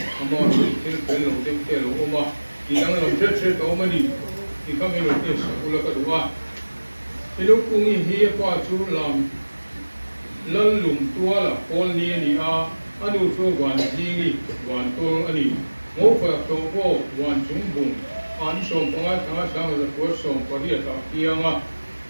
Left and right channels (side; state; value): both; inverted; correlation -1.00